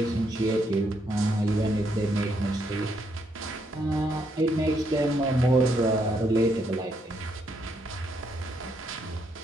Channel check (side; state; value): both; normal; correlation 0.75